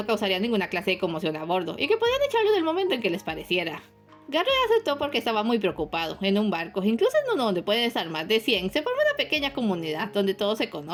causaría ninguna clase de conmoción a bordo y que podían echarlo del momento en que les pareciera. Garrett aceptó porque estaba muy preocupado. En un barco, incluso en uno donde pueden estar más de 100, se forma una pequeña comunidad donde todos se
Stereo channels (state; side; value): identical; both; correlation 1.00